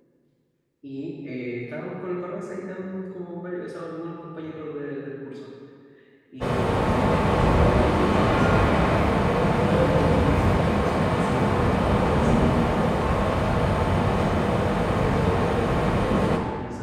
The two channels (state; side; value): identical; both; correlation 1.00